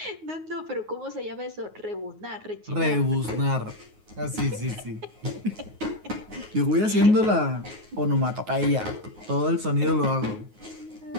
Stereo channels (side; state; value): left; late; 9.4 ms